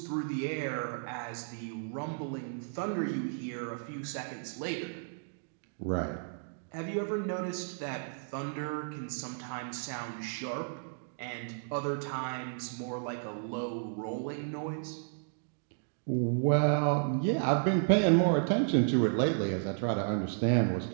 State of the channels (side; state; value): left; silent; digital silence